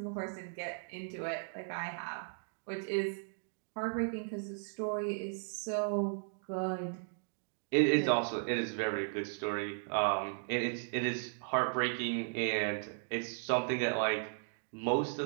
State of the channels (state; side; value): silent; left; digital silence